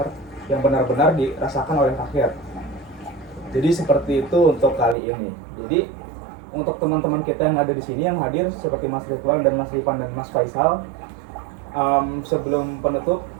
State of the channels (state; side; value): drops out; left; at 5.0 s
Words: yang benar-benar dirasakan oleh rakyat. Jadi seperti itu untuk kali ini. Jadi untuk teman-teman kita yang ada di sini yang hadir seperti Mas Ridwan dan Mas Ripan dan Mas Faisal, sebelum penutup,